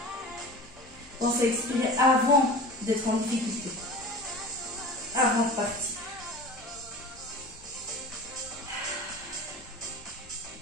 Pensez à expirer avant d'être en difficulté. Avant de partir.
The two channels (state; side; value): normal; both; correlation 0.36